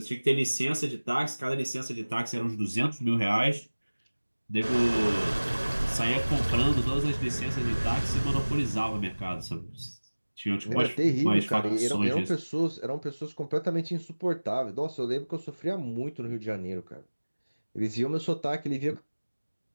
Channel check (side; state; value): both; inverted; correlation -1.00